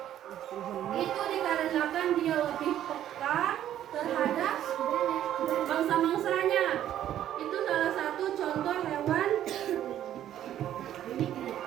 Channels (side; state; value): left; quieter; 11.5 dB